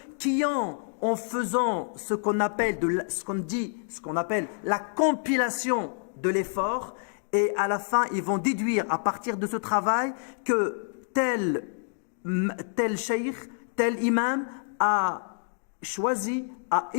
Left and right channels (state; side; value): silent; right; 60 dB below the other